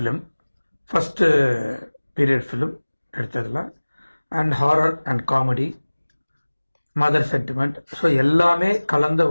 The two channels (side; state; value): both; inverted; correlation -1.00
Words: first period film எடுத்ததில். And horror and comedy, mother sentiment, so எல்லாமே கலந்த